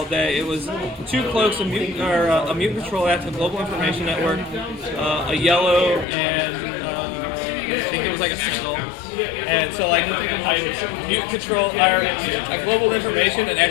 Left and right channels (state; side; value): drops out; right; at 6.1 s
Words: day. It was 2 cloaks, a mutant control act, a global information network, a yellow, and I think it was like a single. And so like I mutant control, I global information, and